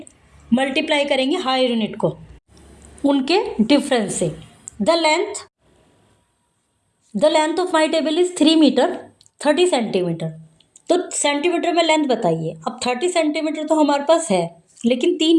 multiply करेंगे higher unit को उनके difference से। The length of my table is 3 metre 30 centimetre. तो सेंटीमीटर में लेंथ बताइए। अब 30 सेंटीमीटर तो हमारे पास है, लेकिन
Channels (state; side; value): identical; both; correlation 1.00